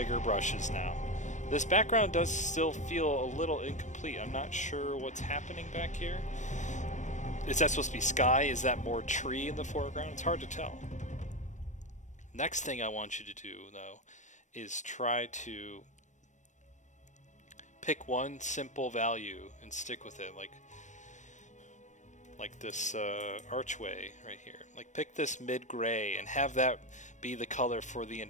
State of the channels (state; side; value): late; right; 0.35 ms